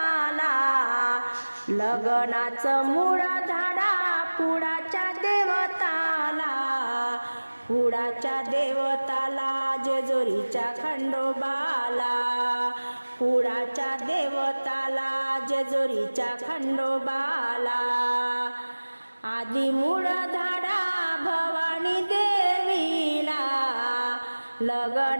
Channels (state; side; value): inverted; both; correlation -1.00